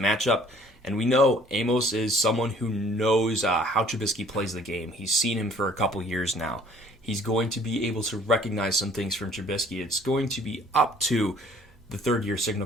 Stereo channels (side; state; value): both; normal; correlation 0.56